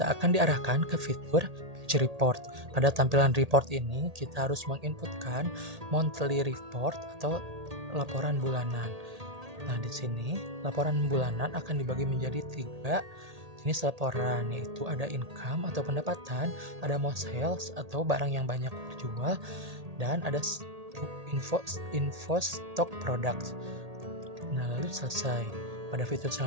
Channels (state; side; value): late; left; 1.8 ms